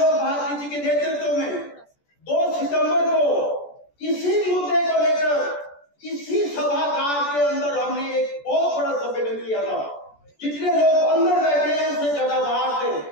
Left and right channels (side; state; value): right; late; 14 ms